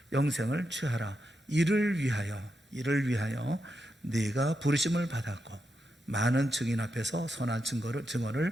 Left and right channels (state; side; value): normal; both; correlation 0.85